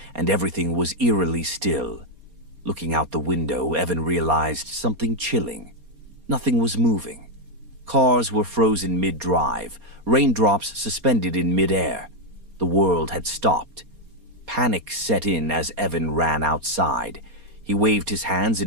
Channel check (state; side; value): late; left; 4.3 ms